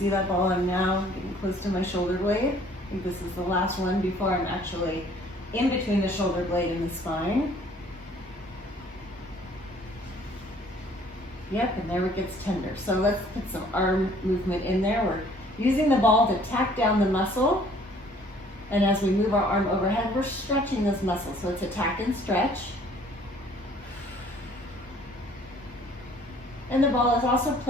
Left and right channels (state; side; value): normal; both; correlation 0.57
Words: that ball, I'm now getting close to my shoulder blade. I think this is the last one before I'm actually in between the shoulder blade and the spine. Yep, and there it gets tender. So let's put some arm movement in there. We're using the ball to tack down the muscle. And as we move our arm overhead, we're stretching this muscle. So it's a tack and stretch. And the ball is also